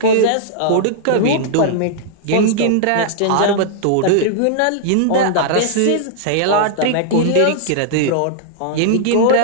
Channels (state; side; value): different; both; correlation -0.01